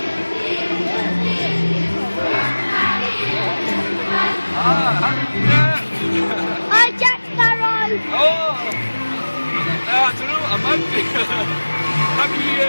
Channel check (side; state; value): both; inverted; correlation -1.00